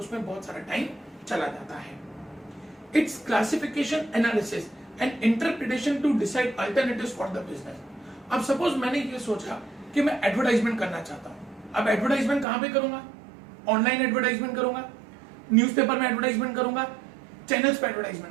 बहुत सारा टाइम चला जाता है। Its classification, analysis and interpretation to decide alternatives for the business. अब सपोज मैंने ये सोचा कि मैं एडवर्टाइजमेंट करना चाहता हूं। अब एडवर्टाइजमेंट कहां पे करूंगा? ऑनलाइन एडवर्टाइजमेंट करूंगा, न्यूज़पेपर में एडवर्टाइजमेंट करूंगा, चैनल्स पे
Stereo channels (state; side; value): drops out; left; at 12.5 s